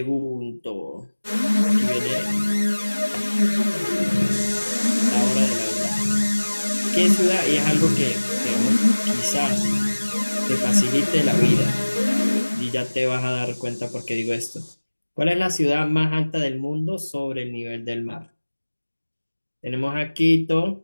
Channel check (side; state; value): both; inverted; correlation -1.00